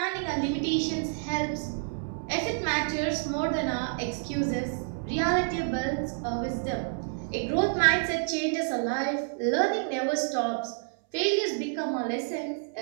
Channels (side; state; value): left; silent; 59 dB below the other